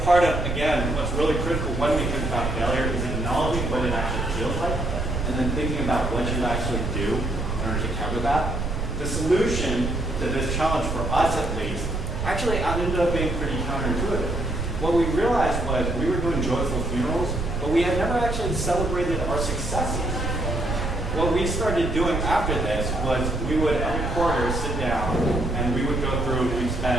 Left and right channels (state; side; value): noise; right; rumble, 2 dB below the sound